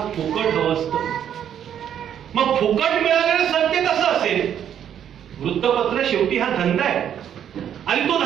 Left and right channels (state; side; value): quieter; left; 9.5 dB